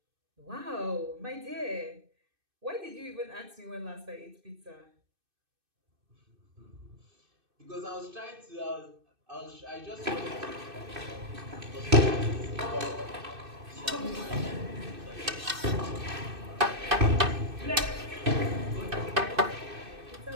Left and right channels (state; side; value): late; left; 2.6 ms